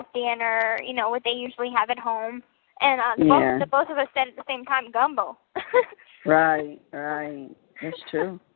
dinner, what they usually have at home, and both of us said at the same time, gumbo. Right, that's true.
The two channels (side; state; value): right; silent; digital silence